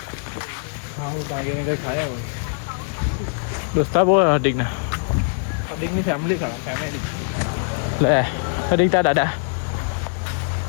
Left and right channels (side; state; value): right; silent; 64 dB below the other